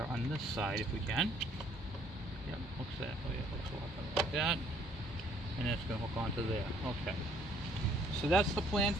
on this side if we can. Yep, looks that. Oh yeah, looks a lot better like that. And it's going to hook onto there. Okay. So that's the plan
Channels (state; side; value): normal; both; correlation 0.62